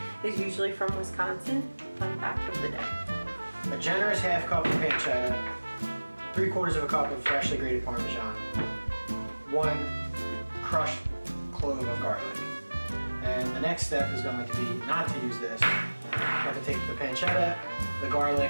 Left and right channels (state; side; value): inverted; both; correlation -1.00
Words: is usually from Wisconsin? Fun fact of the day. A generous half cup of pancetta, 3/4 of a cup of freshly grated Parmesan, 1 crushed clove of garlic. And the next step is going to be not to use this. You have to take the pancetta, the